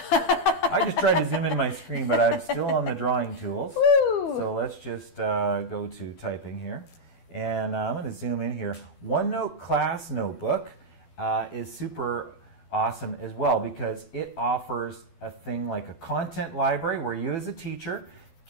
I just tried to zoom in my screen, but I'm still on the drawing tools. Woo! So let's just go to typing here. And I'm going to zoom in here. OneNote Class Notebook is super awesome as well because it offers a thing like a content library where you as a teacher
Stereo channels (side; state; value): right; late; 12 ms